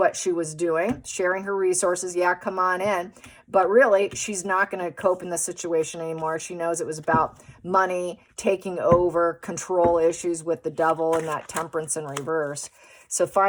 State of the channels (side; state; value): both; identical; correlation 1.00